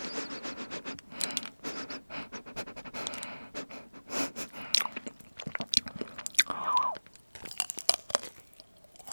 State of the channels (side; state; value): both; inverted; correlation -1.00